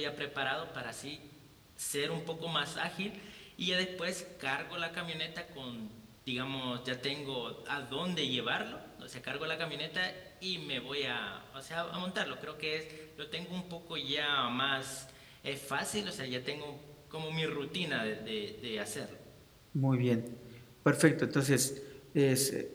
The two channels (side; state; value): both; identical; correlation 1.00